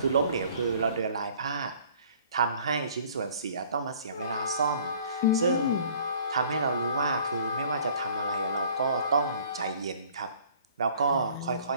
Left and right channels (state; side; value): inverted; both; correlation -0.54